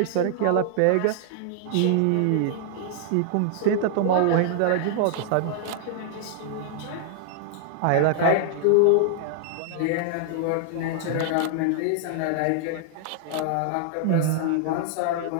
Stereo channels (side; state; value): both; different; correlation -0.01